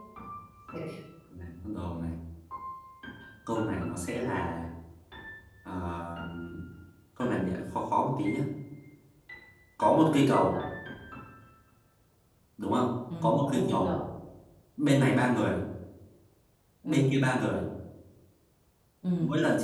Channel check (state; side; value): identical; both; correlation 1.00